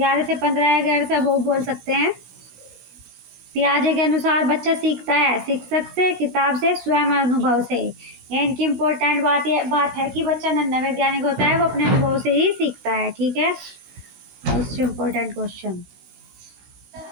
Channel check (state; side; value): late; left; 16 ms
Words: 15 या 11 से अब बोल सकते हैं। पियाजे के अनुसार बच्चा सीखता है शिक्षक से, किताब से, स्वयं अनुभव से। ये इनकी इम्पोर्टेंट बात है कि बच्चा नन्हा वैज्ञानिक होता है, वो अपने अनुभव से ही सीखता है। ठीक है। मोस्ट इम्पोर्टेंट क्वेश्चन,